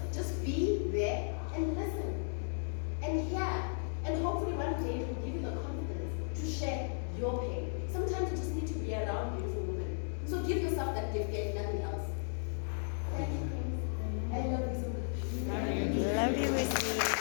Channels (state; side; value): silent; right; 54 dB below the other